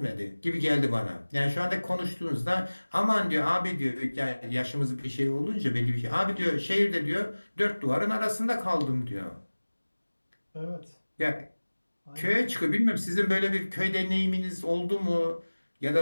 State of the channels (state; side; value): inverted; both; correlation -1.00